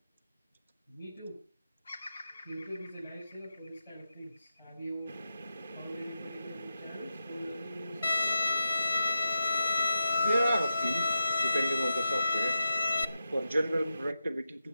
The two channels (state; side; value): inverted; both; correlation -0.89